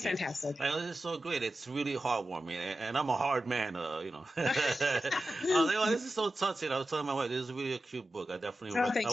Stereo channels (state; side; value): normal; both; correlation 0.93